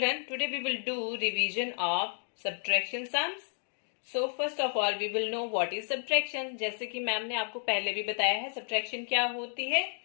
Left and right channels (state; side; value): silent; right; 57 dB below the other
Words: today we will do revision of subtraction sums. So first of all we will know what is subtraction. जैसे कि ma'am ने आपको पहले भी बताया है, subtraction क्या होती है,